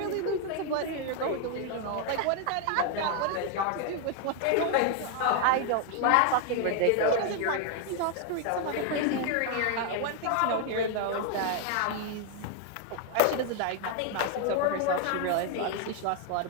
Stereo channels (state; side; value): different; both; correlation 0.00